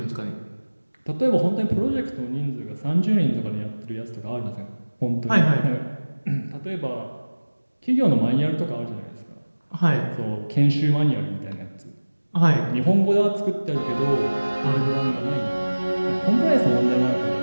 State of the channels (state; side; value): inverted; both; correlation -1.00